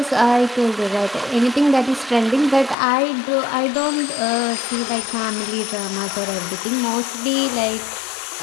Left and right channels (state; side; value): drops out; right; at 2.8 s